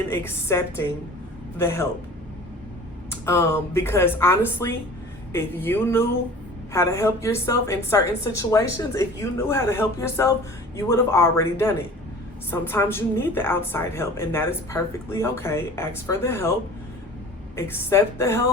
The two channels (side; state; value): both; normal; correlation 0.43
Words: accepting the help. Because honestly, if you knew how to help yourself in certain situations, if you knew how to help yourself, you would have already done it. Sometimes you need the outside help, and that is perfectly okay. Ask for the help, accept the